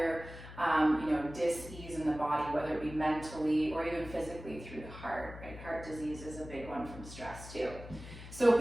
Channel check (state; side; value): noise; left; hum, 14 dB below the sound